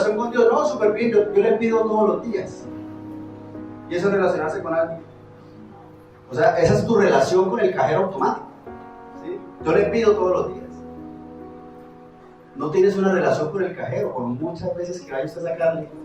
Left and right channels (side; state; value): both; identical; correlation 1.00